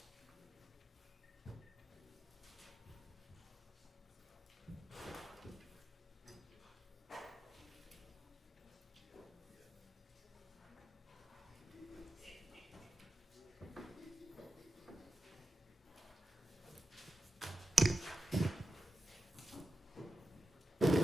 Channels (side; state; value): both; normal; correlation 0.91